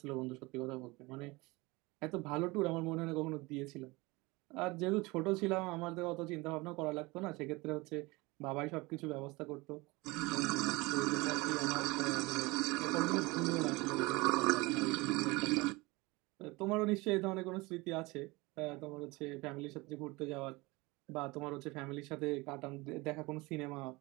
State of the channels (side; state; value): left; quieter; 23.6 dB